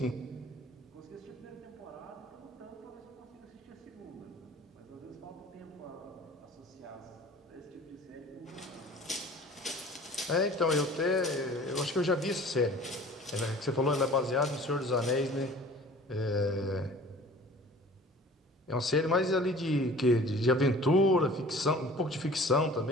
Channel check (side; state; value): both; normal; correlation 0.46